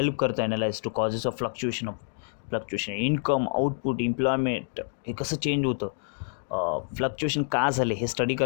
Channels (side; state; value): right; silent; 60 dB below the other